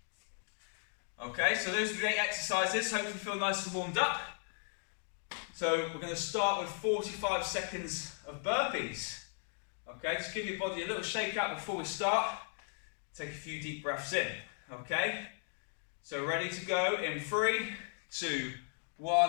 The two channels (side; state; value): right; silent; 53 dB below the other